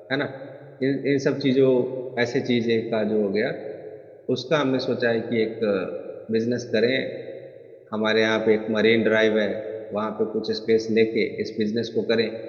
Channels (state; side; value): identical; both; correlation 1.00